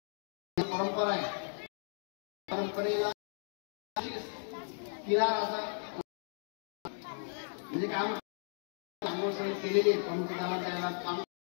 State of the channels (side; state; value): right; silent; digital silence